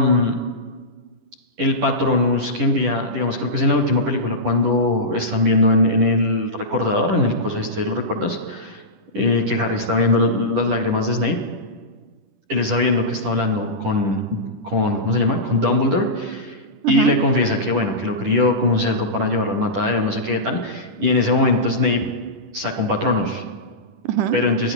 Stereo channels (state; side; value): late; left; 10 ms